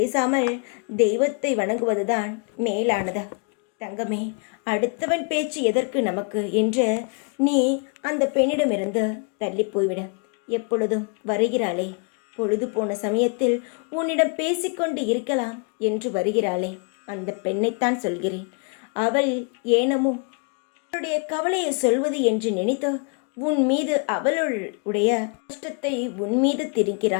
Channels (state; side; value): quieter; right; 38.7 dB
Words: தெய்வத்தை வணங்குவதுதான் மேலானது. தங்கமே, அடுத்தவன் பேச்சு எதற்கு நமக்கு என்று நீ அந்த பெண்ணிடமிருந்து தள்ளி போய்விட. எப்பொழுதும் வருகிறாளே, பொழுது போன சமயத்தில் உன்னிடம் பேசிக்கொண்டு இருக்கலாம் என்று வருகிறாளே, அந்த பெண்ணைத்தான் சொல்கிறேன். அவள் ஏனமோ அவளுடைய கவலையை சொல்வது என்று நினைத்து உன் மீது அவளுடைய கஷ்டத்தை உன் மீது